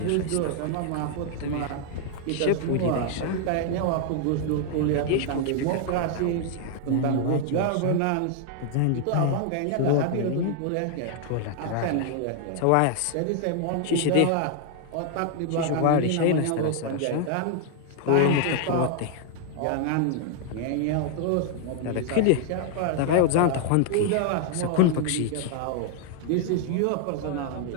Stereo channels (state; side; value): different; both; correlation 0.00